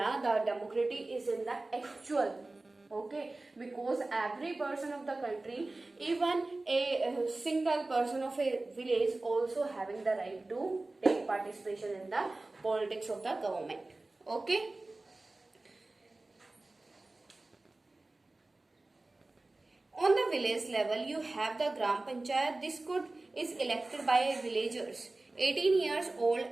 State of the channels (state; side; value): quieter; left; 3.1 dB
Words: the democracy is in the actual. Okay, because every person of the country, even a single person of a village also having the right to take participation in the politics of the government. Okay. On the village level, you have the gram panchayat. This is elected by villagers 18 years old